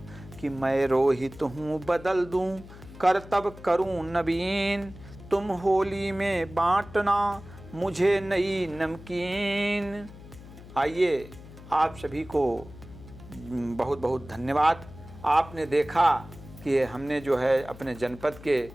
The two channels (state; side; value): noise; left; hum, 17 dB below the sound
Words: कि मैं रोहित हूँ बदल दूँ करतब करूँ नवीन, तुम होली में बांटना मुझे नई नमकीन। आइए आप सभी को बहुत बहुत धन्यवाद। आपने देखा कि हमने जो है अपने जनपद के